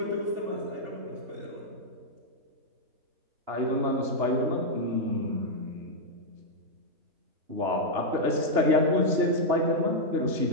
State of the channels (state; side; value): late; left; 2.9 ms